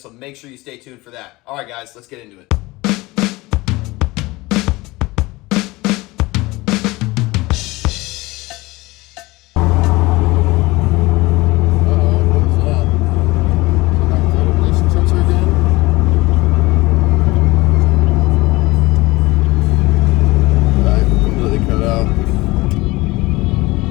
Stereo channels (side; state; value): right; quieter; 21.2 dB